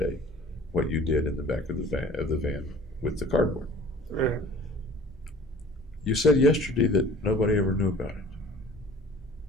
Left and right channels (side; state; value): both; normal; correlation 0.46